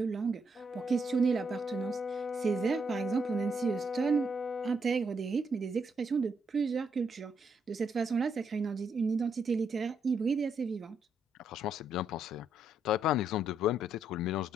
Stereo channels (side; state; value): both; normal; correlation 0.76